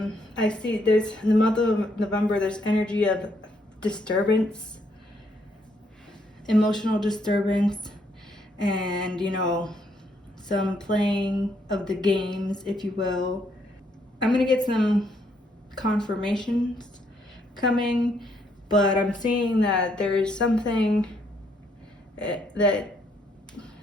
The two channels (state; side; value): normal; both; correlation 0.72